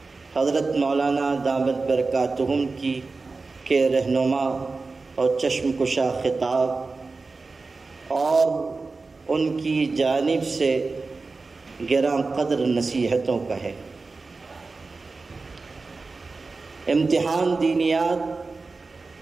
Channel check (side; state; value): left; quieter; 3.9 dB